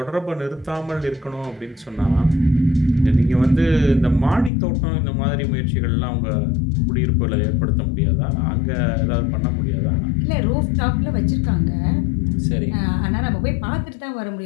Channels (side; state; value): right; drops out; at 4.5 s